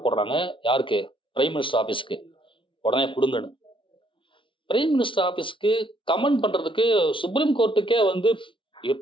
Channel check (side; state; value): right; late; 0.25 ms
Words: போடுறாங்க, யாருக்கு? பிரைம் மினிஸ்டர் ஆஃபீஸுக்கு. உடனே கொடுங்கன்னு. பிரைம் மினிஸ்டர் ஆஃபீஸுக்கு கமெண்ட் பண்றதுக்கு சுப்ரீம் கோர்ட்டுக்கே வந்து